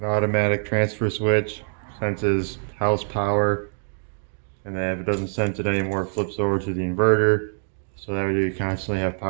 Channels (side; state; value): left; silent; 62 dB below the other